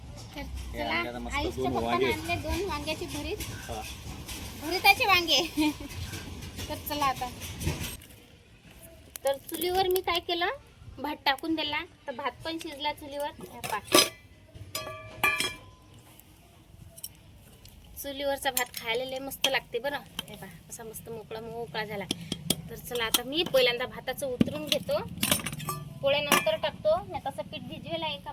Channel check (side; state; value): both; identical; correlation 1.00